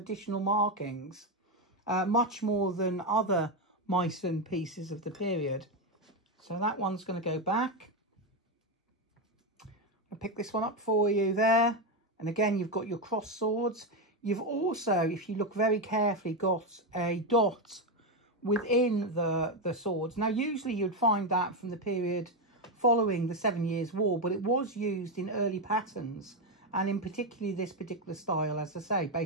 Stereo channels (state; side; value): normal; both; correlation 0.08